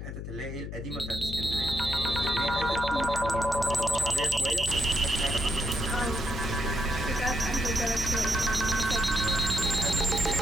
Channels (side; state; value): left; noise; hum, 8 dB below the sound